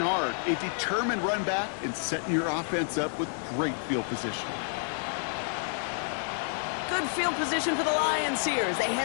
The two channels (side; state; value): right; silent; 58 dB below the other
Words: hard, a determined run back, and setting your offense up with great field position. Good field position for the Lions here as they